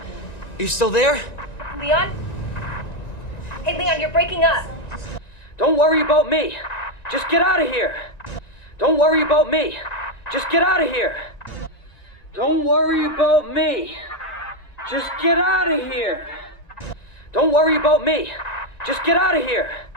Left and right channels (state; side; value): late; right; 1.9 ms